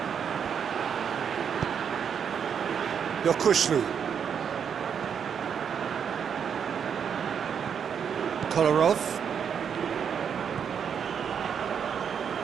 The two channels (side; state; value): left; quieter; 7.5 dB